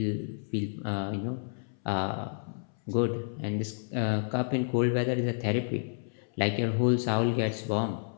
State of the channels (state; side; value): silent; right; 58 dB below the other